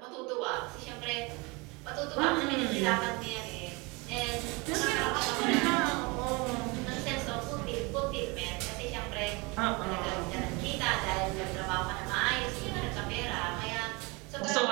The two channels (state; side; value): quieter; left; 27.1 dB